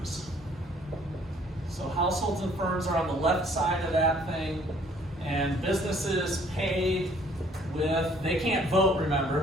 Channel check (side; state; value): both; normal; correlation 0.60